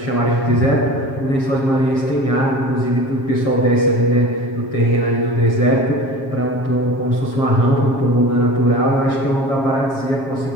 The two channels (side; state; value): right; late; 7.4 ms